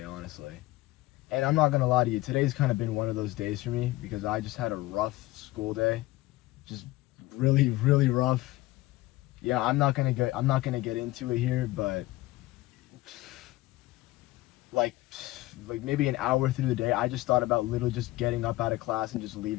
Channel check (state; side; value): quieter; right; 18.3 dB